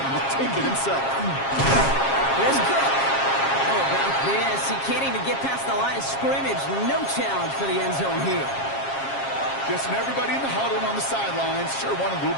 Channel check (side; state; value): right; late; 7.4 ms